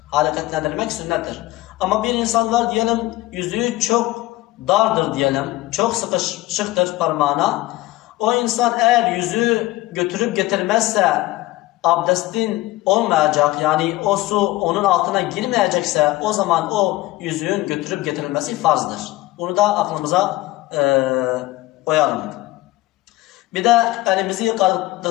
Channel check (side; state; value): right; quieter; 18.2 dB